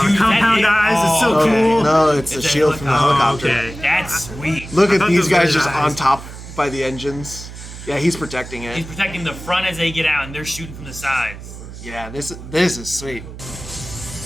Dude, compound that- eyes is so oh, cool. No, it's the shield from the helicopter. Okay. That's sweet. Look I at thought these those were guys his just eyes. on top by the engines. Yeah, he's protecting He's it. protecting the front as they get out, and they're shooting from the sides. Yeah, this is sweet.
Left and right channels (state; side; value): noise; right; hum, 13 dB below the sound